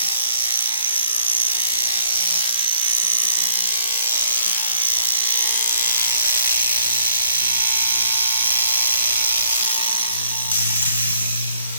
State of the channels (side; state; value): both; inverted; correlation -0.60